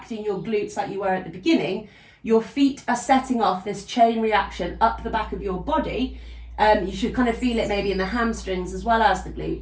your glutes like you were at the beginning. Your feet are setting off this chain reaction up the back of your body. You should kind of feel it maybe in the hamstrings as well as the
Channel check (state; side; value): identical; both; correlation 1.00